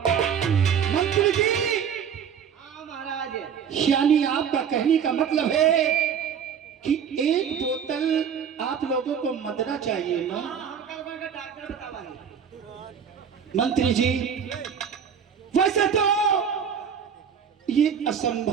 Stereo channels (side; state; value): left; quieter; 7.6 dB